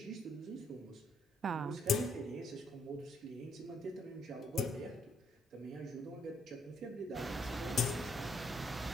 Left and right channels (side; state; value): both; normal; correlation 0.70